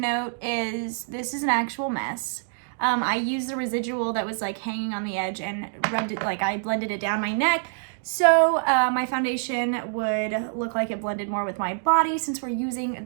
is this is an actual mess. I used the residual that was like hanging on the edge and rubbed it, like I blended it down my neck. So my foundation would look like it blended more with my body since we're using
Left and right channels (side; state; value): left; silent; digital silence